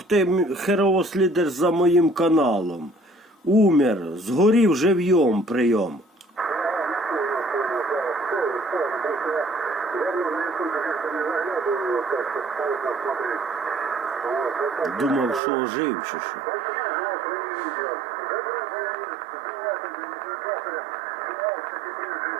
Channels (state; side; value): drops out; left; at 15.4 s